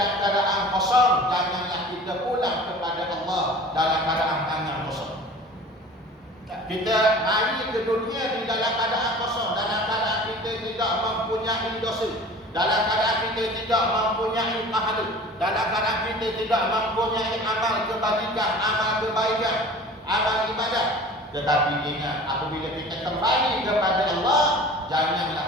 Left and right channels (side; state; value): both; normal; correlation 0.42